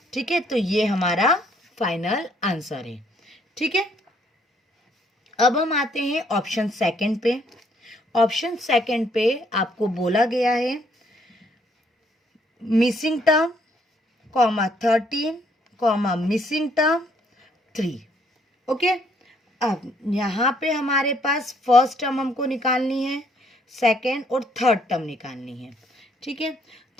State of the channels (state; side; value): normal; both; correlation 0.67